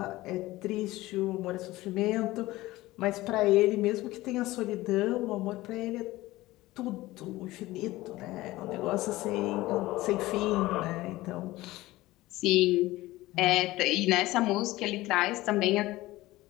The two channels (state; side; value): quieter; right; 18.2 dB